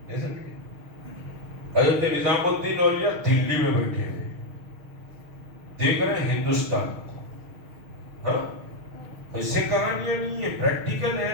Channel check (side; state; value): left; late; 6.4 ms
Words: حضرت نظام الدین اولیاء دلی میں بیٹھے ہوئے دیکھ رہے ہیں ہندوستان کو. ہاں, ایسے کہانیاں نہیں ہے, پریکٹیکل